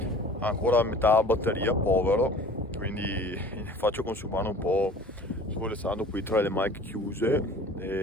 ha ancora metà batteria, povero, quindi faccio consumare un po' svolezzando qui tra le mic chiuse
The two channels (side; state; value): both; normal; correlation 0.45